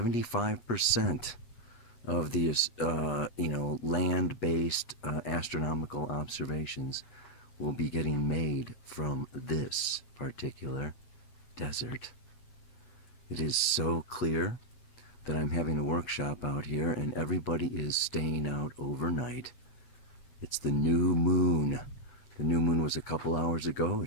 of the land-based astronomical observations will be getting made from this particular desert. It is so clear that I'm having a workshop out here and everybody is staying out overnight. It's the new moon. The new moon was a couple hours ago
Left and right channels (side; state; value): right; late; 8.2 ms